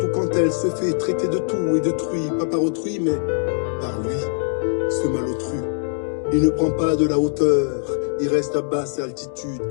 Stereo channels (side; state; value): right; silent; digital silence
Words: quand elle se fait traiter de tout et détruit, pas par autrui, mais par lui, ce malotru. Il ne prend pas de la hauteur, il reste à basse altitude